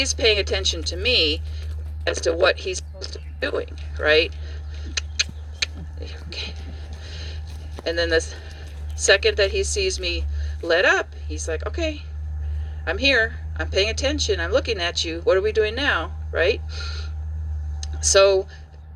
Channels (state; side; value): identical; both; correlation 1.00